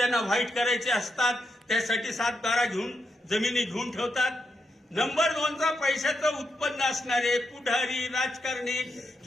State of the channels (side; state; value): both; normal; correlation 0.83